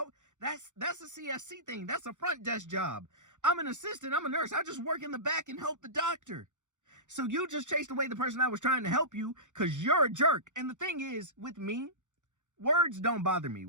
That's a CSC thing. That's a front desk job. I'm an assistant. I'm a nurse. I just work in the back and help the doctor. So you just chased away the person that was trying to help you because you're a jerk. And the thing is, with me, words don't bother me.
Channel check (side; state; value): left; late; 0.85 ms